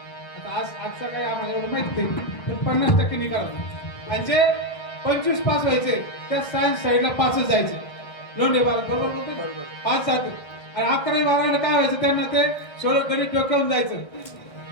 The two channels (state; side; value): late; right; 1.6 ms